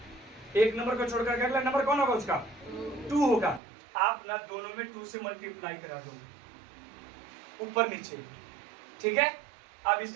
एक नंबर को छोड़ करके अगला नंबर कौन होगा? उसका 2 होगा। आप ना दोनों में 2 से मल्टीप्लाई करा दो ऊपर नीचे, ठीक है। अब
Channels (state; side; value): drops out; left; at 3.6 s